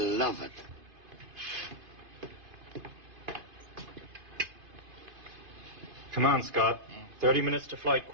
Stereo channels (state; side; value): late; left; 2.5 ms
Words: it. Come on, Scott. 30 minutes to flight